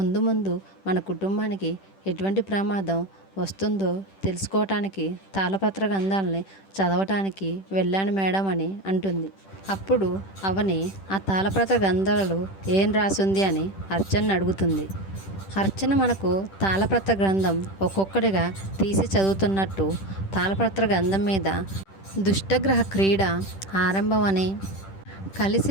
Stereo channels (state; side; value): late; right; 10 ms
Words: ముందు మన కుటుంబానికి ఎటువంటి ప్రమాదం వస్తుందో తెలుసుకోవటానికి తాళపత్ర గ్రంథాలని చదవటానికి వెళ్ళాను మేడం అని అంటుంది. అప్పుడు అవని, ఆ తాళపత్ర గ్రంథాలలో ఏం రాసింది అని అర్చనని అడుగుతుంది. అర్చన మనకు తాళపత్ర గ్రంథం ఒక్కొక్కటిగా తీసి చదువుతున్నట్టు తాళపత్ర గ్రంథం మీద దుష్టగ్రహ క్రీడ ఆరంభం అని,